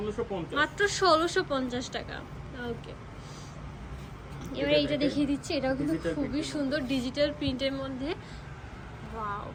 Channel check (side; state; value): both; identical; correlation 1.00